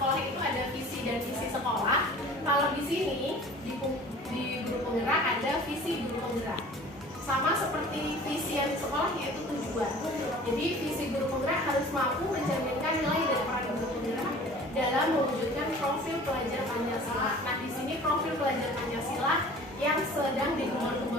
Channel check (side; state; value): both; normal; correlation 0.45